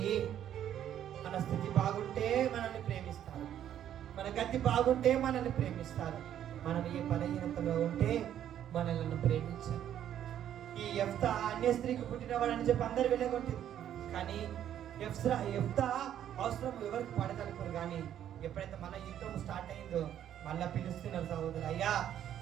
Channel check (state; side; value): quieter; left; 10.6 dB